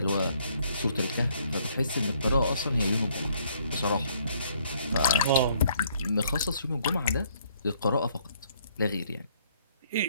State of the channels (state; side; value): inverted; both; correlation -0.65